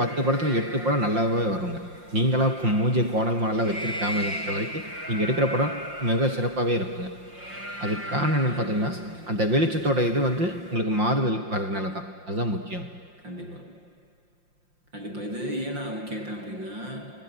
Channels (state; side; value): late; left; 5.7 ms